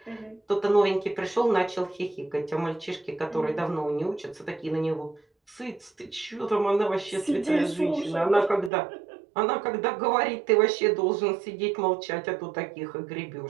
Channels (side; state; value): left; drops out; at 8.7 s